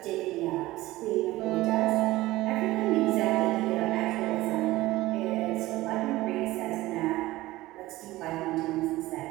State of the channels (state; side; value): quieter; left; 17.8 dB